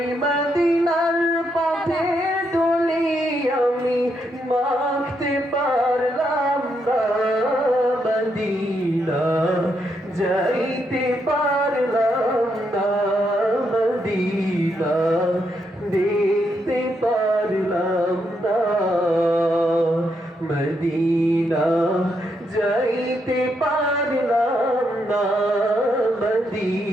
মদিনার পথে দুলি আমি মাখতে পারলাম না মদিনা যাইতে পারলাম না মদিনা দেখতে পারলাম না মদিনা যাইতে পারলাম না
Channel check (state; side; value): normal; both; correlation 0.79